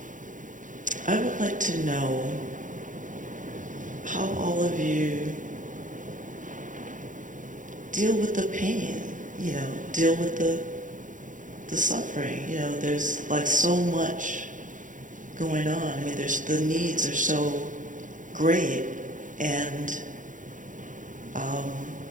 I would like to know how all of you deal with the pain, deal with the suffering. There's like so much going on. I mean, the needs are so great, and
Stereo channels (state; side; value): late; left; 0.37 ms